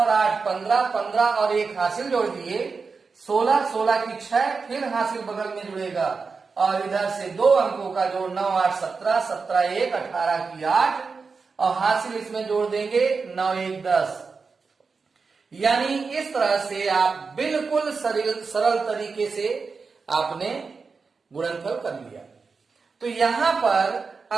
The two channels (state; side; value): quieter; left; 4.8 dB